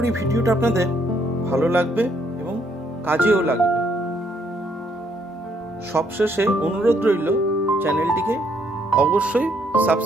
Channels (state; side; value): normal; both; correlation 0.70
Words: ভিডিওটা আপনাদের ভালো লাগবে এবং কাজেও লাগবে। সবশেষে অনুরোধ রইল, চ্যানেলটিকে অবশ্যই